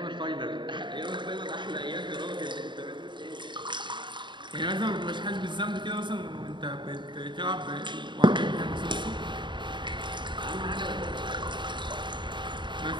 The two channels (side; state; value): left; late; 0.23 ms